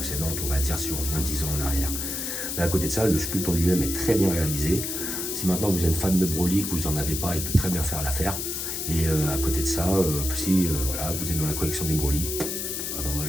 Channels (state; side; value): noise; left; hiss, 3 dB below the sound